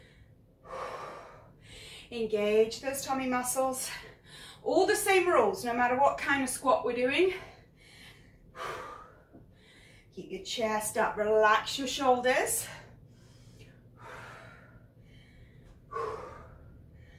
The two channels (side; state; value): both; identical; correlation 1.00